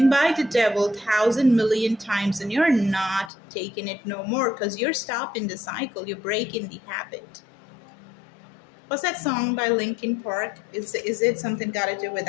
by the devil 1,000,000,000 times, and you're not taking it no more because you're stopping the cycle. You're breaking the habit. What's that song by Linkin Park? Is it something got to do with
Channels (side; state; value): right; drops out; at 3.3 s